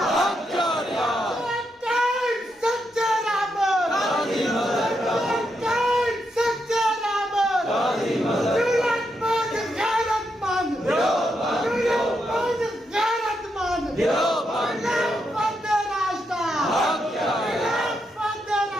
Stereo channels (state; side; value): normal; both; correlation 0.82